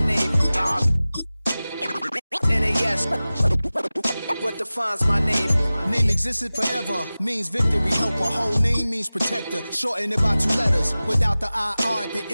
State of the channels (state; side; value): inverted; both; correlation -0.97